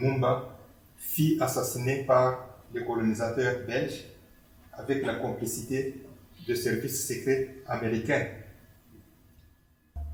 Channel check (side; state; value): both; identical; correlation 1.00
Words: fut assassiné par les colonisateurs belges avec la complicité de services secrets américains.